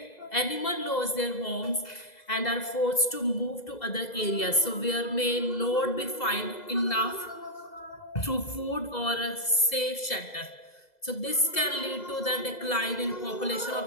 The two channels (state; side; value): late; right; 2.0 ms